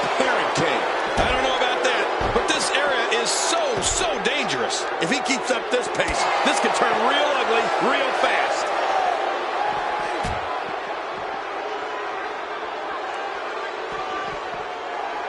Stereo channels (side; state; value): both; identical; correlation 1.00